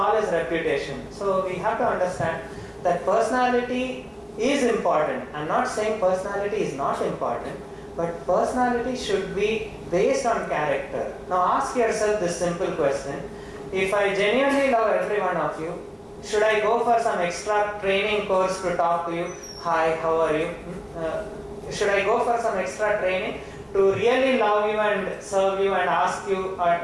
his reputation. So we have to understand that personality is important. I'm not saying personality is not important, but personality should be based on character. Now ask yourself this simple question: if I genuinely love every one of you, should I go for some extra training course to talk to you? Hi, how are you? Should I go for some extra training to really love you and serve you and ask you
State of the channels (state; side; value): identical; both; correlation 1.00